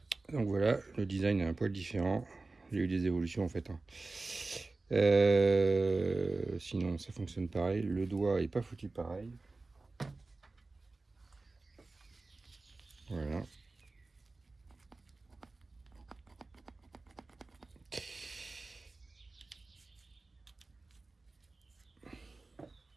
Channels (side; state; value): left; quieter; 3.4 dB